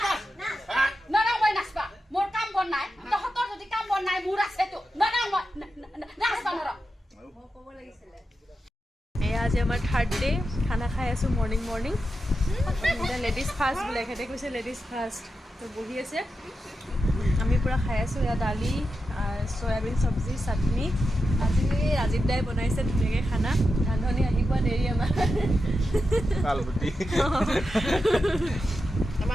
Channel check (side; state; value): both; normal; correlation 0.89